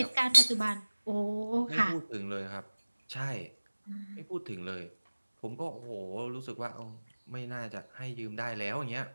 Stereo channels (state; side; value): inverted; both; correlation -1.00